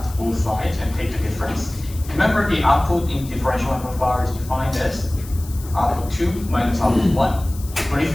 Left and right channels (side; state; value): left; noise; hiss, 18 dB below the sound